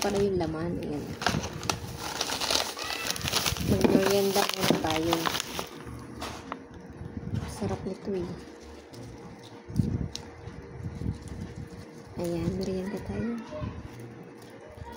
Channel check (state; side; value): identical; both; correlation 1.00